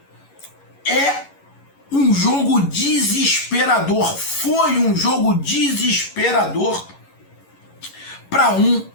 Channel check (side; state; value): right; late; 11 ms